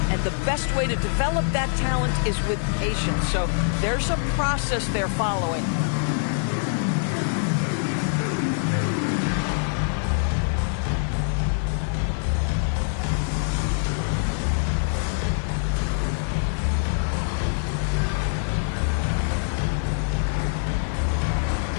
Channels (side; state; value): right; silent; digital silence